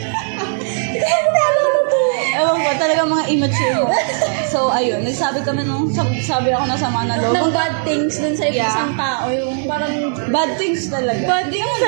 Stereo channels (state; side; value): silent; left; digital silence